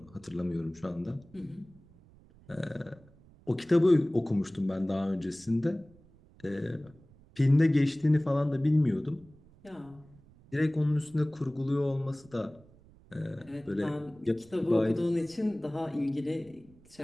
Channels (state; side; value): noise; right; rumble, 26 dB below the sound